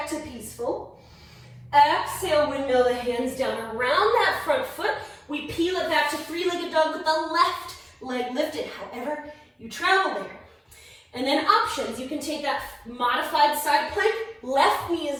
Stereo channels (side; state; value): both; identical; correlation 1.00